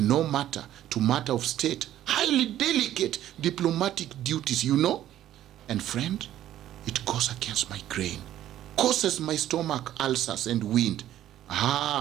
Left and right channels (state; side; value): quieter; left; 12.4 dB